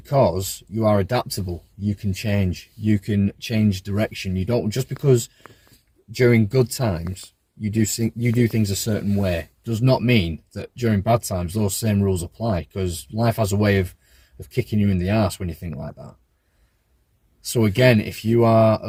you are adaptable, you can change direction. You don't, just because during good times you do things a certain way, does not mean that during bad times those same rules apply, because life has a way of kicking you in the arse when you think like that. So again, if you are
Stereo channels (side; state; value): both; identical; correlation 1.00